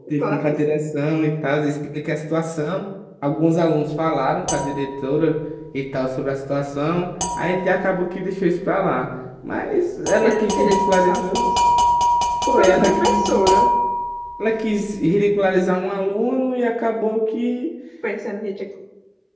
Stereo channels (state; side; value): identical; both; correlation 1.00